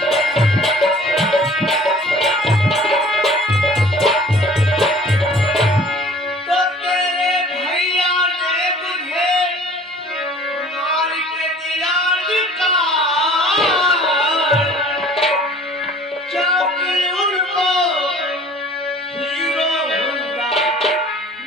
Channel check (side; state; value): both; normal; correlation 0.49